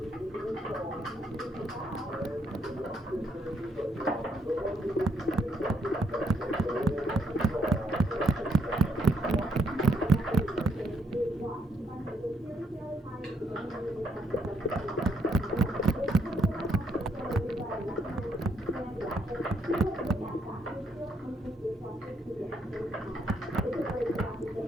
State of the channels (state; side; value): normal; both; correlation 0.74